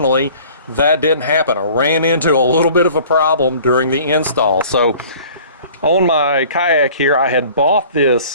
that didn't happen. I ran into a little bit of a problem during the install. So on my kayak here, I had bought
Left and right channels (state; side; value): inverted; both; correlation -0.49